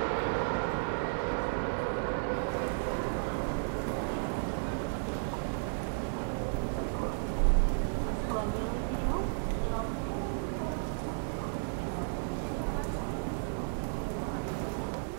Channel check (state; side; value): silent; left; digital silence